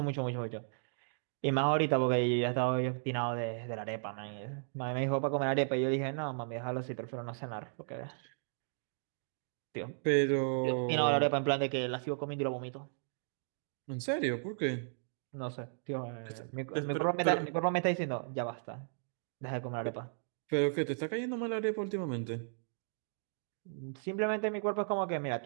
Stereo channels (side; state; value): left; silent; digital silence